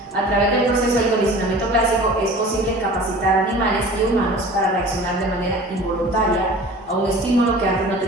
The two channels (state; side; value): normal; both; correlation 0.42